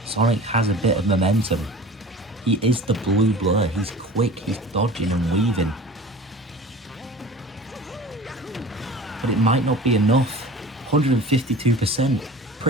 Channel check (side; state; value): both; normal; correlation 0.40